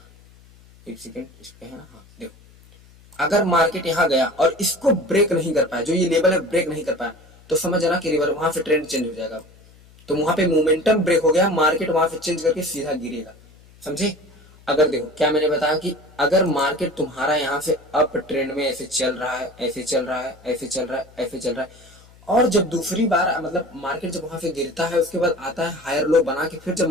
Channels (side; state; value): left; noise; hum, 25 dB below the sound